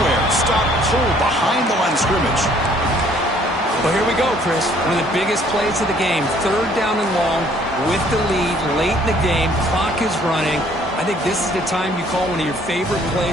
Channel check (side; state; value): both; normal; correlation 0.60